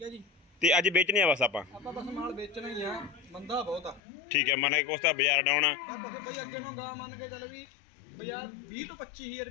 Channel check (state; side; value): drops out; right; at 4.0 s